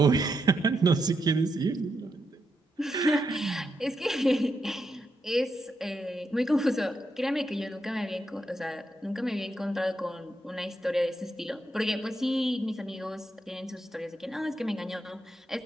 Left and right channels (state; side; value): normal; both; correlation 0.83